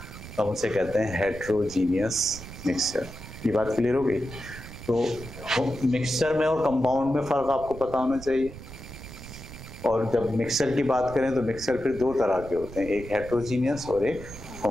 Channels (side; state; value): right; noise; rumble, 13 dB below the sound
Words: तो हम उसे कहते हैं हेट्रोजीनियस मिक्सचर। ये बात क्लियर हो गई? तो मिक्सचर में और कंपाउंड में फ़र्क आपको पता होना चाहिए। और जब मिक्सचर की बात करें तो मिक्सचर फिर दो तरह के होते हैं, एक हेट्रोजीनियस और एक